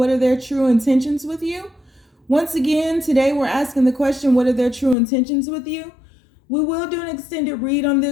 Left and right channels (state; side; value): drops out; right; at 5.0 s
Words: are their true intentions with you? Once again, today we're asking the question, what are their true intentions with you? We will do an extended read on